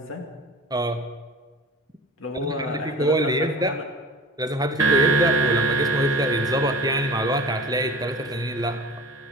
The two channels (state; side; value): normal; both; correlation 0.40